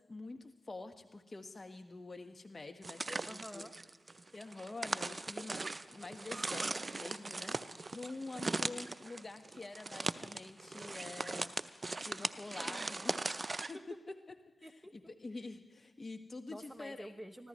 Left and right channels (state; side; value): normal; both; correlation 0.95